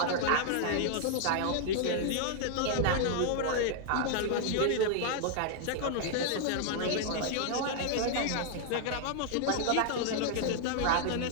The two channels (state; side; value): different; both; correlation 0.00